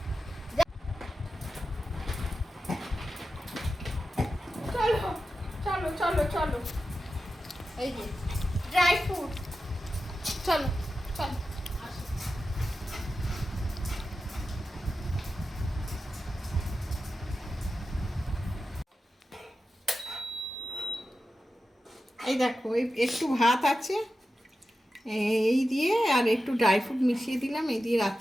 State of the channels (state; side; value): normal; both; correlation 0.92